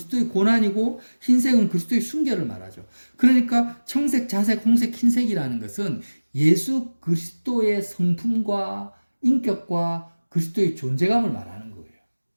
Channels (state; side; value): inverted; both; correlation -1.00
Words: 고난이고 흰색은 그리스도의 순결을 말하죠. 그러니까 청색, 자색, 홍색, 흰색이라는 것은 예수 그리스도의 성품과 인격과 그리스도의 존재감을 말하는 거예요.